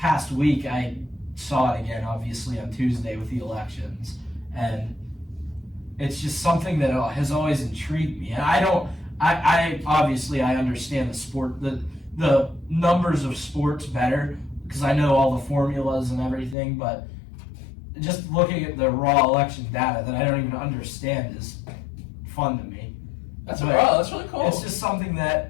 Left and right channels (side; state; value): right; drops out; at 16.6 s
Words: week, I saw it again, obviously, on Tuesday with the elections. And it's just something that has always intrigued me. And I obviously understand the sport, the numbers of sports better because I know all the formulas and everything, but just looking at the raw election data that I don't even understand is fun to me. That's really cool. It's just something